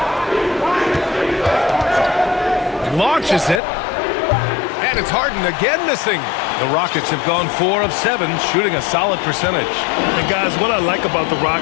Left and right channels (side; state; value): right; drops out; at 3.6 s